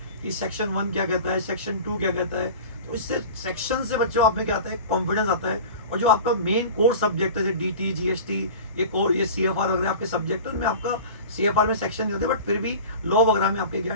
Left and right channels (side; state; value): both; inverted; correlation -0.36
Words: कि सेक्शन 1 क्या कहता है, सेक्शन 2 क्या कहता है, तो इससे सेक्शन से बच्चों आप में क्या आता है, कॉन्फिडेंस आता है। और जो आपका मेन कोर सब्जेक्ट है जैसे DT GST ये CFR वगैरह आपके सब्जेक्ट है, उनमें आपका CFR में सेक्शन नहीं होते, बट फिर भी लॉ वगैरह में आपके क्या